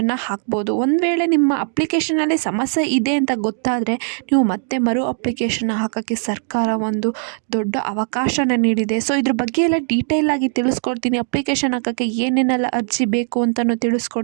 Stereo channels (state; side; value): silent; left; 66 dB below the other